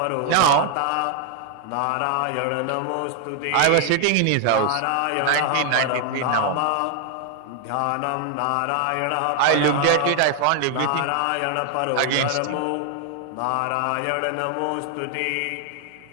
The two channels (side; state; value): both; different; correlation 0.00